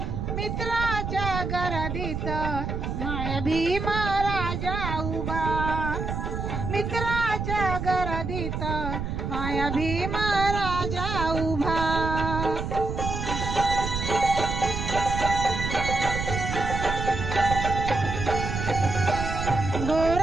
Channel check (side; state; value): right; noise; rumble, 4 dB below the sound